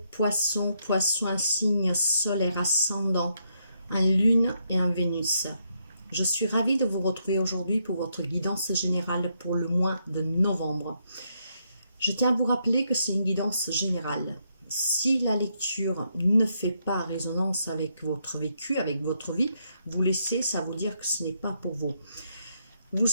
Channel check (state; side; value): inverted; both; correlation -0.78